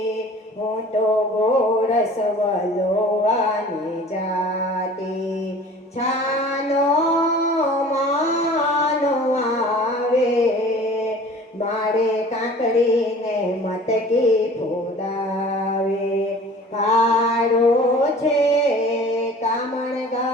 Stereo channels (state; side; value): normal; both; correlation 0.45